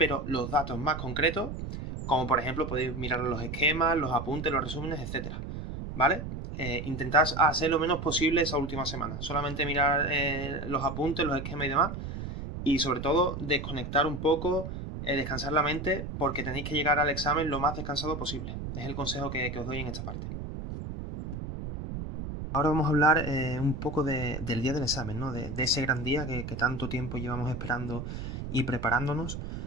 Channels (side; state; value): right; noise; rumble, 7 dB below the sound